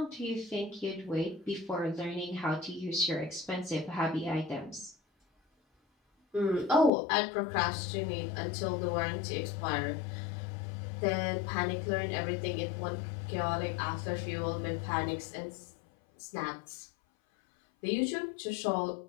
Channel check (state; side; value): drops out; right; at 6.9 s